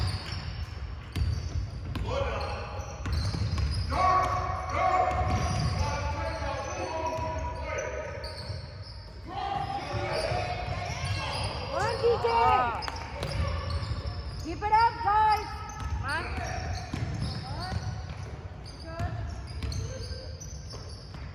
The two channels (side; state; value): both; identical; correlation 1.00